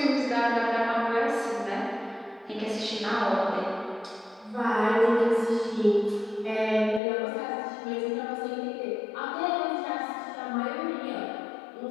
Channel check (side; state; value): right; drops out; at 7.0 s